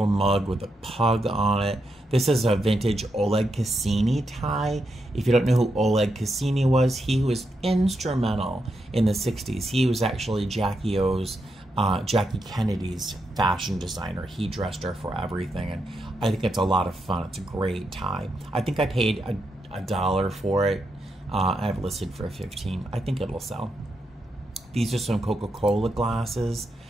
mug with a pug on it. This is a vintage Oleg Cassini tie. If you don't know who Oleg Cassini was, he was instrumental in the 60s. He was actually Jackie Kennedy's fashion designer. He dressed her for everything, and I think it's a lot of fun. It's a great tie. I think I paid $1 for it. I have it listed for $15. I think it'll sell. These are some Coca-Cola glasses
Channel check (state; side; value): normal; both; correlation 0.83